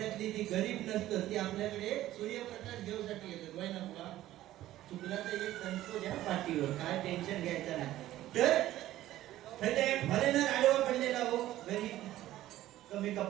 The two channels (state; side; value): quieter; left; 14.4 dB